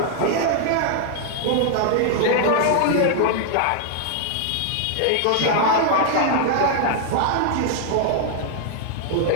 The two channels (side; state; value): both; different; correlation -0.01